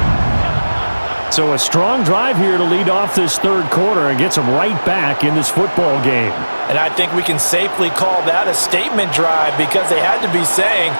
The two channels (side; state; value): both; inverted; correlation -1.00